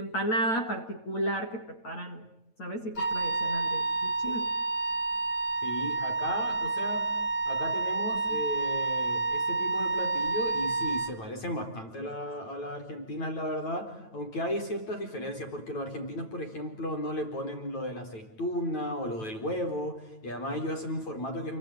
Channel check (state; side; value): late; right; 9.1 ms